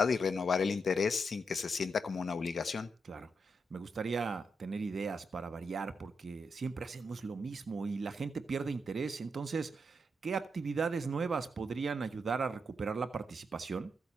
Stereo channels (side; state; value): both; normal; correlation 0.82